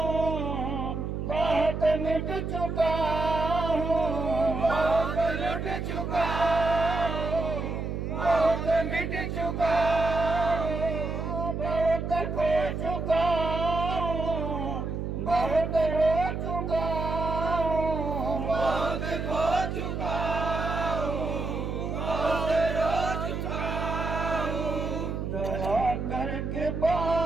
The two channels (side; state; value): right; noise; hum, 3 dB below the sound